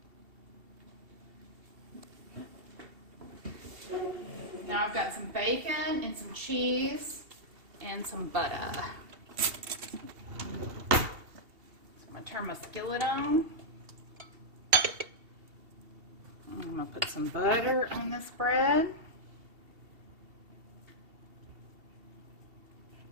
Now I've got some bacon and some cheese and some butter. So I'm going to turn my skillet on. I'm going to put some butter on this bread.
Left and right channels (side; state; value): left; late; 2.7 ms